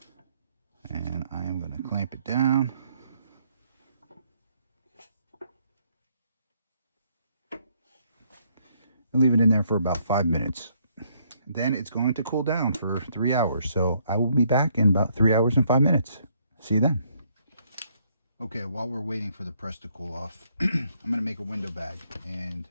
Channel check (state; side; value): inverted; both; correlation -0.70